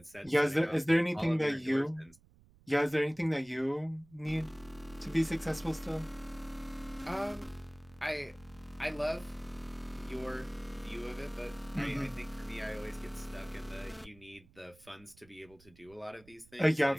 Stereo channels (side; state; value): right; noise; rumble, 26 dB below the sound